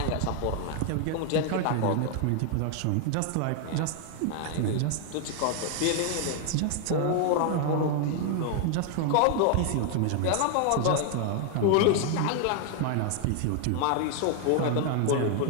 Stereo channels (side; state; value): both; different; correlation 0.00